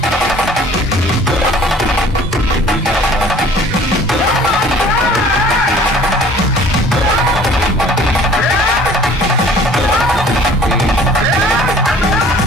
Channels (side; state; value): both; normal; correlation 0.51